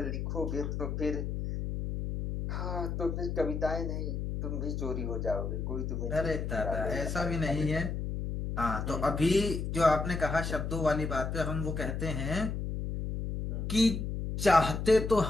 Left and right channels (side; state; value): left; noise; hum, 3 dB below the sound